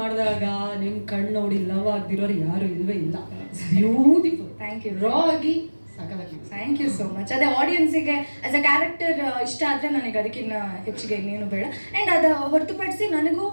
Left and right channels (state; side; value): inverted; both; correlation -1.00